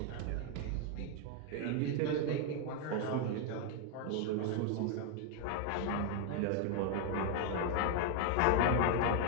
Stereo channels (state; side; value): different; both; correlation 0.01